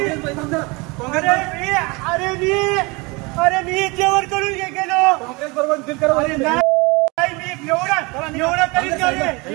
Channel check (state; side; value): quieter; left; 26.6 dB